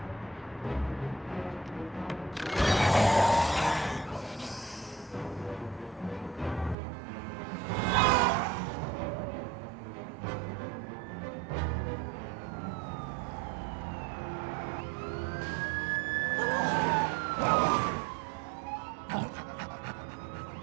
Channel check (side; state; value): left; drops out; at 6.8 s